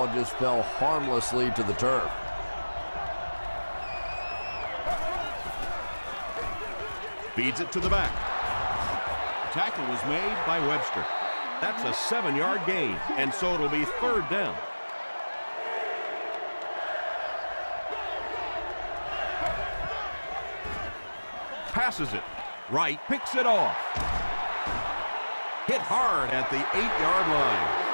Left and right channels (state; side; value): inverted; both; correlation -1.00